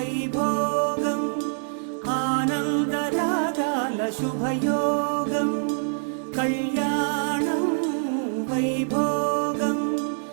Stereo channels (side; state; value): left; silent; digital silence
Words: ఆనందరాగాల శుభయోగం కళ్యాణం వైభోగం